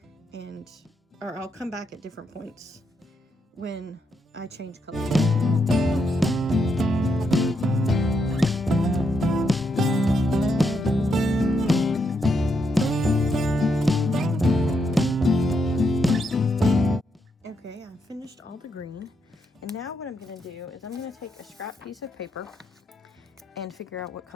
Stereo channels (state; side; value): normal; both; correlation 0.80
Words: or I'll come back at different points when I change colors. Okay, I've finished all the green, and now what I'm going to do is I'm going to take a scrap piece of paper and figure out what